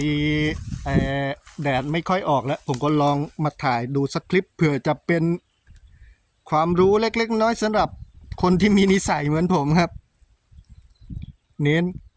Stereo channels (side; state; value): both; identical; correlation 1.00